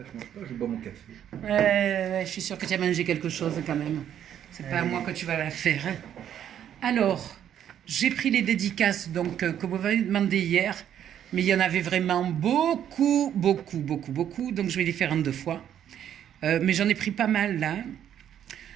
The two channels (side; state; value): left; quieter; 10.0 dB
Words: mange pas, je bois mon café. Je suis sûre que tu as mangé quelque chose quand même. C'est pas à moi que tu vas la faire. Hein. Alors, j'ai pris les dédicaces donc que vous m'avez demandé hier, mais il y en avait vraiment beaucoup. Donc je vais les faire en deux fois. Mais j'en ai pris pas mal là.